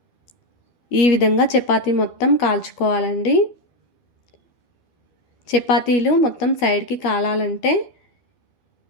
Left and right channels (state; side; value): late; right; 12 ms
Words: ఈ విధంగా చపాతీ మొత్తం కాల్చుకోవాలండి. చపాతీలు మొత్తం సైడ్కి కాలాలంటే